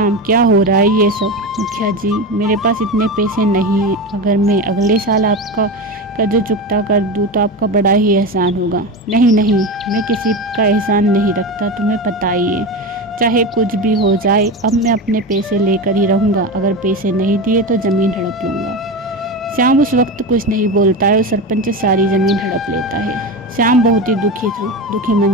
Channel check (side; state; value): both; normal; correlation 0.22